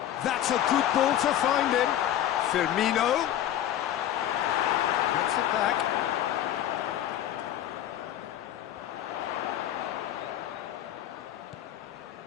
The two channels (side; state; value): right; quieter; 11.6 dB